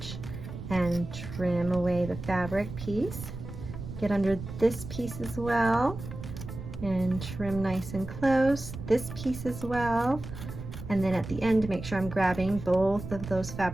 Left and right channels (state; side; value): noise; right; rumble, 10 dB below the sound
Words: and trim away the fabric piece. Get under this piece as well, and trim nice and close. This piece as well. And then at the end, make sure I'm grabbing both of those